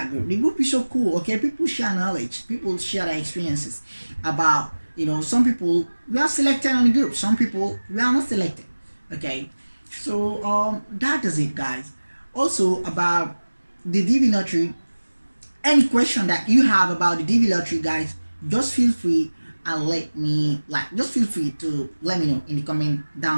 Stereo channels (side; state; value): both; inverted; correlation -1.00